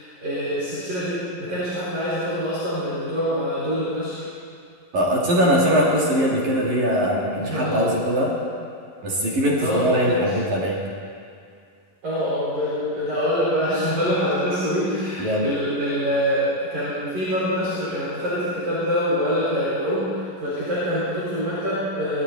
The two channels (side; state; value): left; late; 11 ms